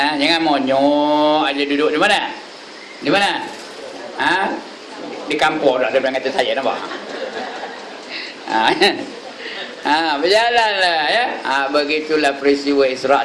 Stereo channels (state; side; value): identical; both; correlation 1.00